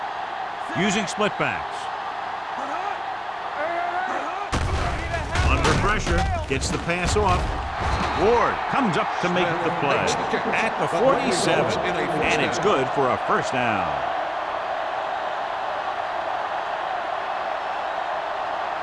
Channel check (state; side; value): identical; both; correlation 1.00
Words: Using split backs. Under pressure, gets the pass off. Ward comes up to make the play at the 47, and it's good for a first down.